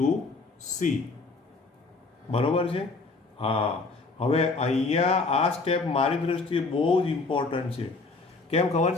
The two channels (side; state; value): right; quieter; 3.9 dB